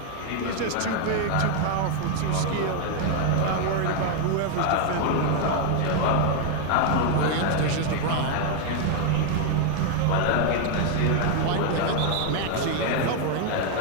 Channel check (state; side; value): different; both; correlation 0.01